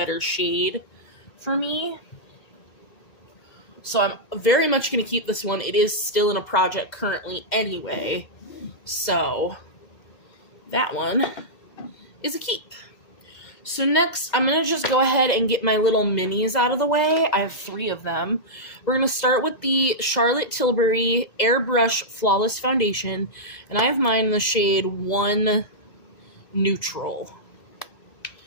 shade for me. So I'm very much going to keep this one. It is still in a project currently anyway, so that one is a keep. So next, I'm going to just go ahead and get my little minis out of the way. I have 3 of them. We're going to start with the Charlotte Tilbury Airbrush Flawless Foundation, and I have mine in the shade 1 Neutral.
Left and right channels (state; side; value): late; right; 2.0 ms